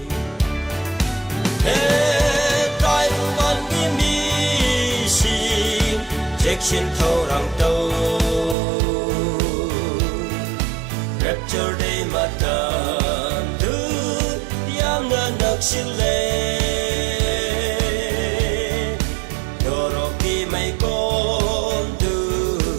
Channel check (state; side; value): drops out; left; at 8.6 s